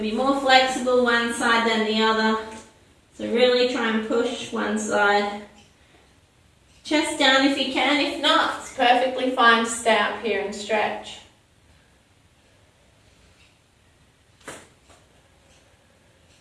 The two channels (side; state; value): both; identical; correlation 1.00